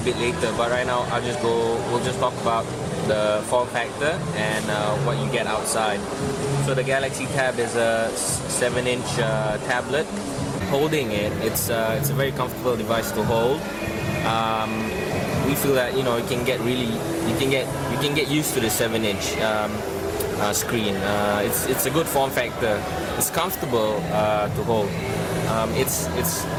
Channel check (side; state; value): both; identical; correlation 1.00